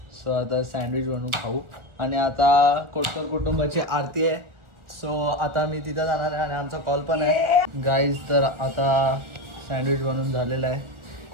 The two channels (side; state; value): left; late; 1.4 ms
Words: सो आता सँडविच बनवून खाऊ. आणि आता कोटकर कुटुंबाची आरती आहे. सो आता मी तिथं जाणार आहे आणि आमचा कॉल पण आहे गाईज. तर आता सँडविच बनवून झालेलं आहे